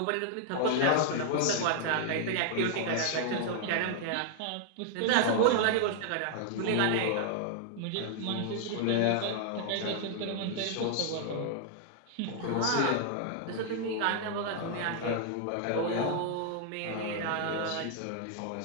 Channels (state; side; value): different; both; correlation 0.00